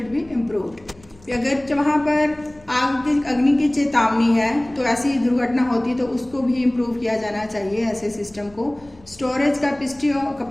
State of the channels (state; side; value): noise; left; rumble, 27 dB below the sound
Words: be improved. अगर वहाँ पर अग्नि की चेतावनी है तो ऐसी दुर्घटना होती है तो उसको भी इम्प्रूव किया जाना चाहिए ऐसे सिस्टम को। Storage